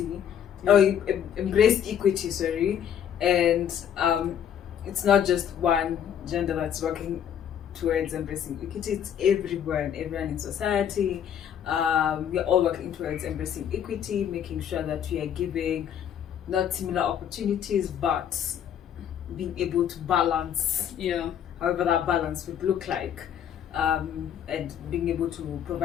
or embrace equity, sorry. And it's not just one gender that's working towards embracing equity, it's everyone in society. We're all working towards embracing equity, making sure that we are giving not similar opportunities, but being able to balance, however that balance would look like, and being able to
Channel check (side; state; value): right; quieter; 9.2 dB